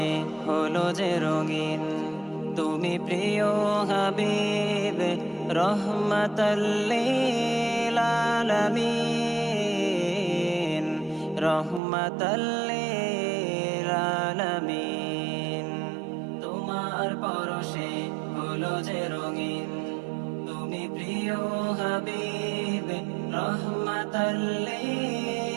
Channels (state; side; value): drops out; left; at 11.8 s